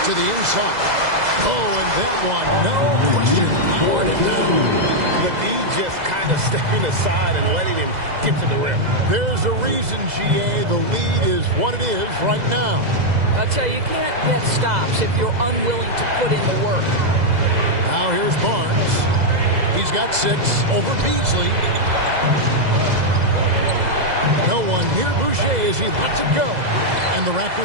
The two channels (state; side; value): late; left; 2.0 ms